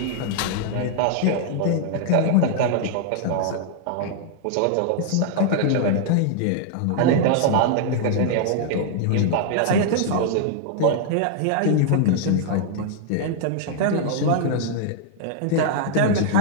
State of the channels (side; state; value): both; different; correlation -0.01